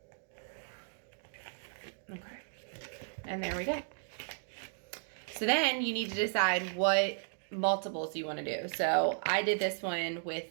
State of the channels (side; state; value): left; silent; digital silence